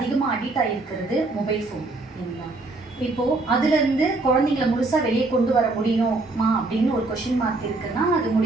அடிக்ட் ஆகிருக்கிறது மொபைல் ஃபோன் இல்லைங்களா? இப்போது அதுலேருந்து குழந்தைங்கள முழுசாக வெளியே கொண்டு வர முடியுமா அப்படின்னு ஒரு கொஷின் மார்க் இருக்குன்னா அது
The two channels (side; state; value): left; quieter; 3.2 dB